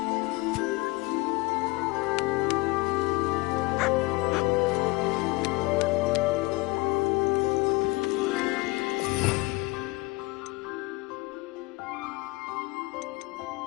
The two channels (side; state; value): right; quieter; 23.9 dB